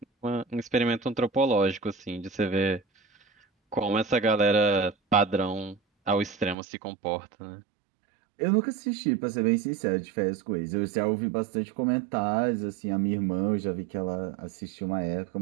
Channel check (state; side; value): drops out; left; at 6.6 s